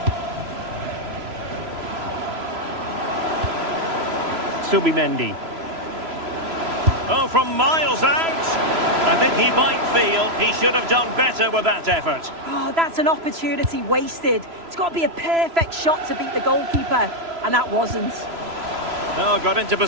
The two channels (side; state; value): left; late; 3.0 ms